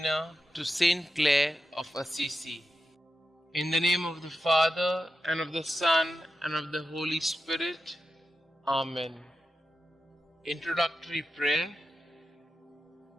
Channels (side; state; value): both; normal; correlation 0.90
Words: to St Clare of Assisi. In the name of the Father, and of the Son, and of the Holy Spirit. Amen. Introductory Prayer.